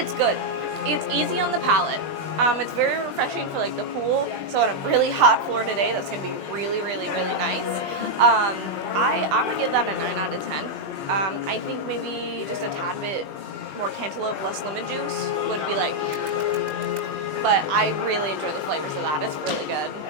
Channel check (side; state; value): left; late; 20 ms